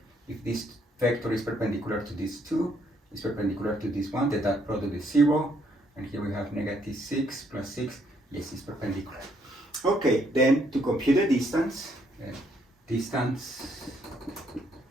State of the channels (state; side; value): normal; both; correlation 0.70